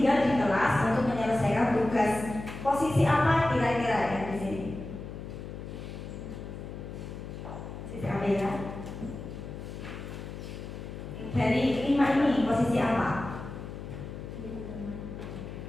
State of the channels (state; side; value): noise; left; hum, 10 dB below the sound